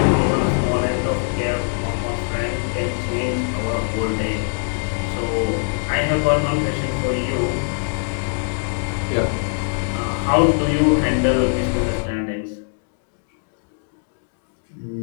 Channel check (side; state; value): right; silent; digital silence